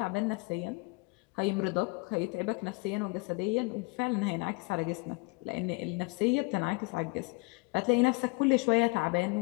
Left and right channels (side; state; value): right; quieter; 29.1 dB